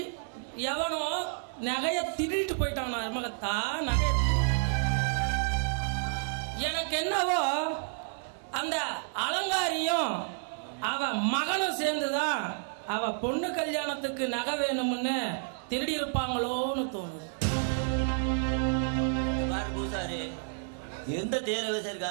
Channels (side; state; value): left; silent; digital silence